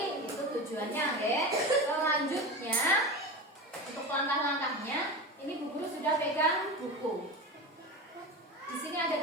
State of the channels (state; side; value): normal; both; correlation 0.26